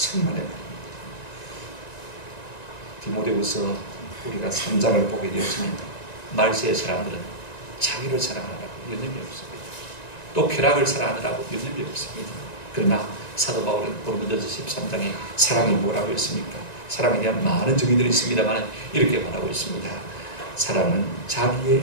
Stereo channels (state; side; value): late; right; 1.9 ms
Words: 말입니다. 디모데후서 우리가 3장을 보게 되었지만 말세의 사람들은 자기를 사랑하라고 여념이 없습니다. 또 쾌락을 사랑하느라고 여념이 없습니다. 그러나 사도 바울은 고린도전서 13장에 사랑이 뭐라고 했습니까? 사랑에 대한 많은 정의들이 있습니다만 이렇게 말하고 있습니다. 사랑은 자기의